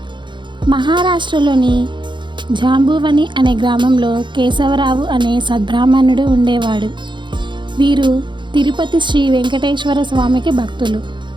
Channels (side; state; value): left; late; 0.23 ms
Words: మహారాష్ట్రలోని జాంబువని అనే గ్రామంలో కేశవరావు అనే సద్బ్రాహ్మణుడు ఉండేవాడు. వీరు తిరుపతి శ్రీ వెంకటేశ్వర స్వామికి భక్తులు.